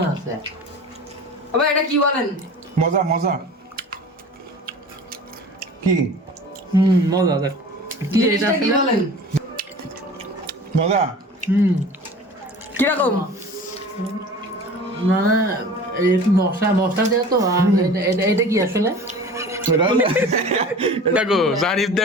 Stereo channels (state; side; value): normal; both; correlation 0.40